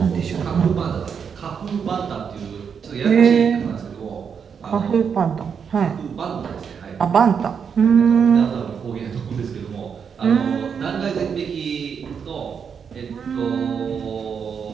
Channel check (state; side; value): quieter; left; 6.8 dB